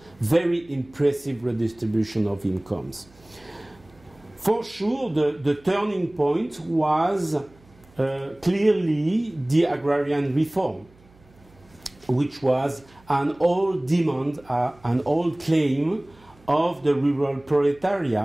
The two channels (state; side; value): noise; right; hum, 28 dB below the sound